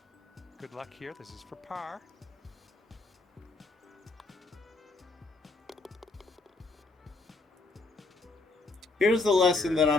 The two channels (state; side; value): quieter; right; 3.4 dB